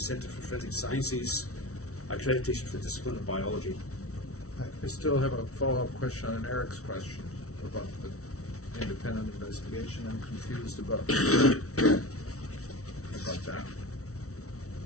for Forensic Sciences accreditation for the discipline of biology. I still have a follow-up question on Eric's question about the independent investigation. I'm confused about that.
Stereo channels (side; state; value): right; late; 0.64 ms